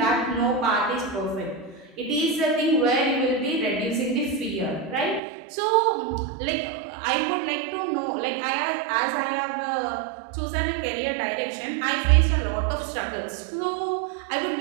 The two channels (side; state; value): left; drops out; at 5.2 s